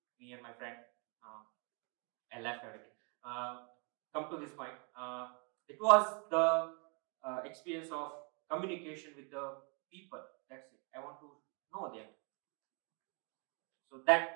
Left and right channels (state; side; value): quieter; left; 35.5 dB